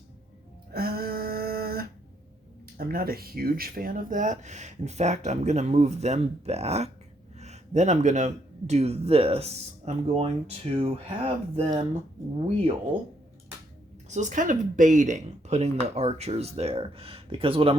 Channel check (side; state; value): both; normal; correlation 0.73